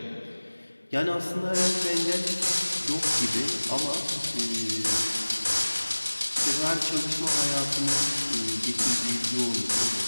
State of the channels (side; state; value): both; inverted; correlation -1.00